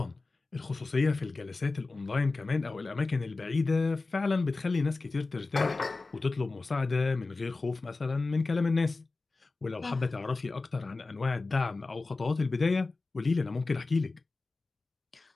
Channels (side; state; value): right; quieter; 3.6 dB